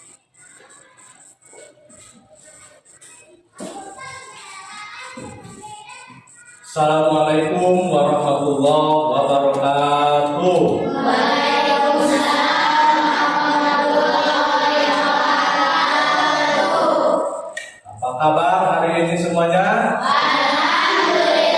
Assalamualaikum warahmatullahi wabarakatuh. Waalaikumsalam warahmatullahi wabarakatuh. Apa kabar hari ini semuanya?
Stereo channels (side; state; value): both; identical; correlation 1.00